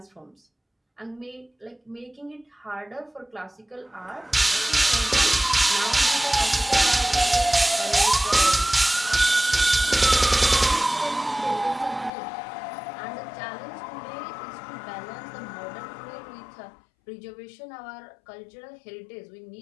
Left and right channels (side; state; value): right; drops out; at 12.1 s